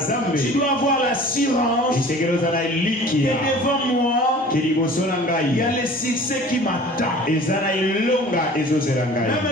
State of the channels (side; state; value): both; normal; correlation 0.45